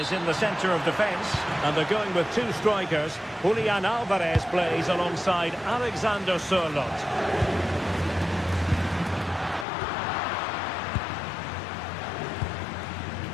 in the centre of defence. And they're going with two strikers. Julian Alvarez plays alongside Alexander Sørloth.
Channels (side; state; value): right; drops out; at 9.7 s